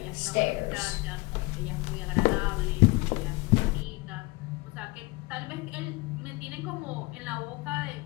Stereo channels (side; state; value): right; quieter; 24.3 dB